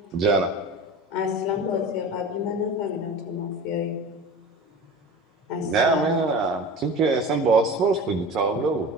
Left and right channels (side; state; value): both; normal; correlation 0.35